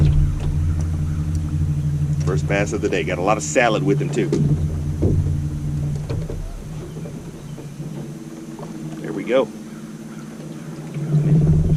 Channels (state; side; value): identical; both; correlation 1.00